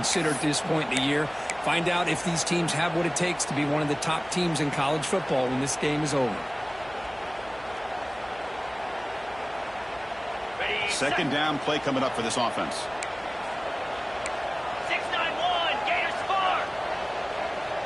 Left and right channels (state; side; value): noise; left; hum, 24 dB below the sound